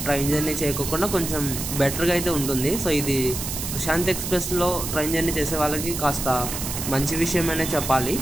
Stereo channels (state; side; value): noise; right; hiss, 5 dB below the sound